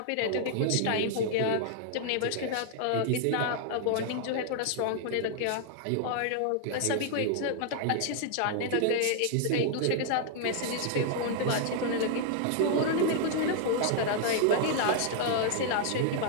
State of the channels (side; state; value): both; different; correlation -0.01